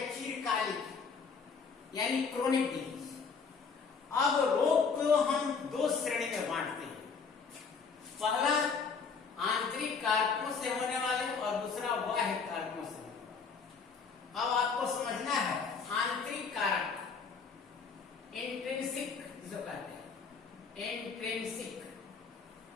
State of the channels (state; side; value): quieter; right; 5.4 dB